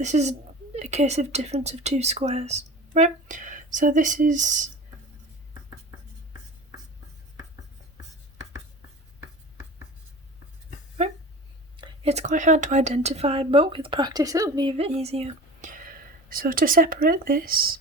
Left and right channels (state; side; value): normal; both; correlation 0.35